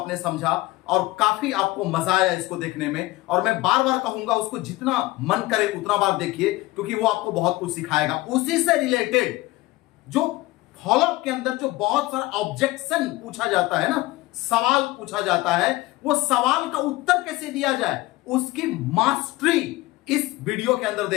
समझा और काफी आपको मजा आया इसको देखने में। और मैं बार बार कहूंगा उसको जितना मन करे उतना बार देखिए, क्योंकि वो आपको बहुत कुछ सिखाएगा। उसी से रिलेटेड जो फॉलो अप के अंदर जो बहुत सारा ऑब्जेक्शन पूछा जाता है ना, सवाल पूछा जाता है, वो सवाल का उत्तर कैसे दिया जाए उसकी मास्टरी इस वीडियो के अंदर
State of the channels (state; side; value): quieter; right; 19.4 dB